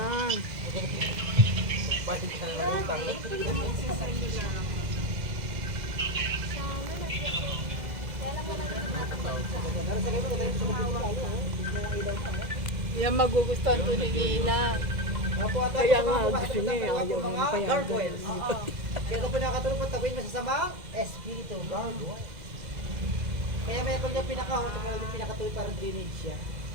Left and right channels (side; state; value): left; late; 2.0 ms